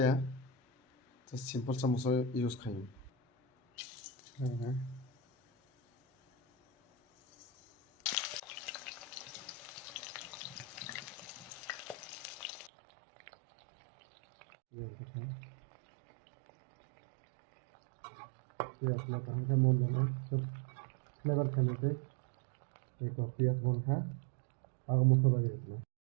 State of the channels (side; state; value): left; drops out; at 12.7 s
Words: just simple सा मस्ला यूज खायो पियाज ना कहाँ का मोल ना सब फ्लेवर खाने के एक पियाज बन खा आग मसाला ये इसमें